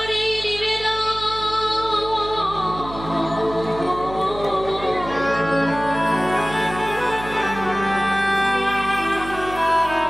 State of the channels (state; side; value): noise; right; hum, 13 dB below the sound